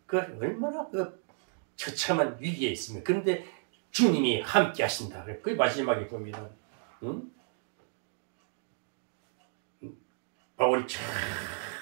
그 얼마나 그 처참한 위기에 있으면 그런데 주님이 함께 하신다. 그 마지막에 봅니다. 바울이 참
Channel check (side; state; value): left; silent; 56 dB below the other